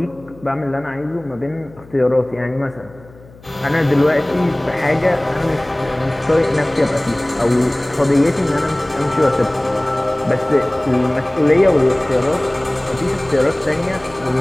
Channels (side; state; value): left; noise; hum, 23 dB below the sound